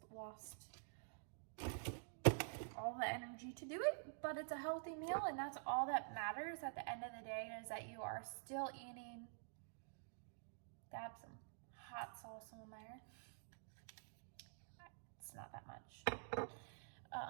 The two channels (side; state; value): left; silent; digital silence